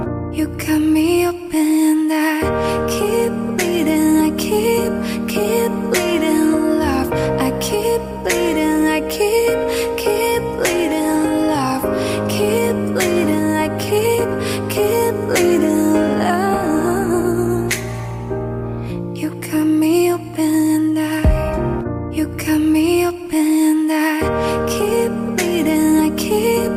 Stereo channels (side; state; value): both; identical; correlation 1.00